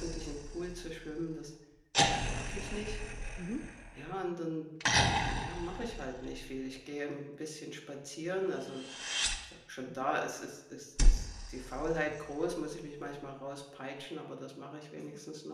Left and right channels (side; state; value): both; identical; correlation 1.00